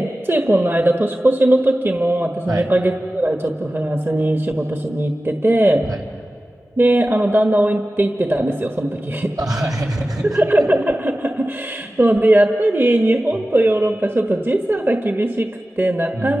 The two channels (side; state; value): both; normal; correlation 0.95